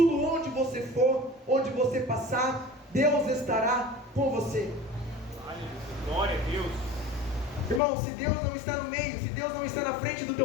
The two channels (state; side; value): drops out; right; at 7.8 s